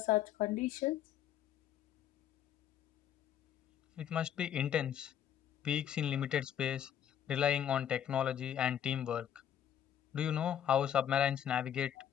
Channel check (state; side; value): quieter; right; 9.9 dB